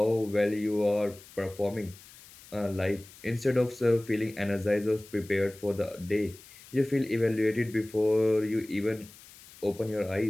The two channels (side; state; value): left; noise; hiss, 21 dB below the sound